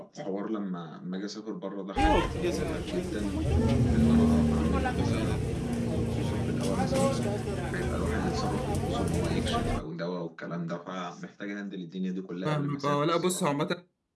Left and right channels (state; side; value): identical; both; correlation 1.00